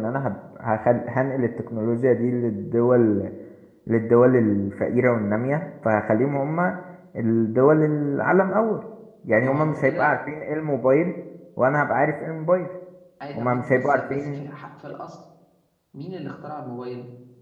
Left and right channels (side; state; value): both; identical; correlation 1.00